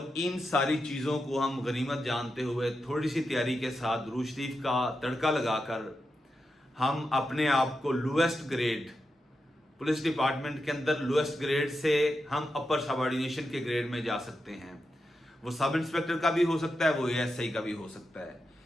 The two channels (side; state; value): both; normal; correlation 0.88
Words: इन सारी चीज़ों को हम गनीमत जानते हुए थोड़ी सी तैयारी के साथ दुरूद शरीफ का तड़का लगाकर हम अपने आप को लोएस्ट ग्रेड पुलिस डिपार्टमेंट के अंदर लोएस्ट ग्रेड से हम अपर सबऑर्डिनेशन के ग्रेड में जा सकते हैं। वो सब इंस्पेक्टर का भी हो सकता है, वो एएसआई का भी हो सकता है।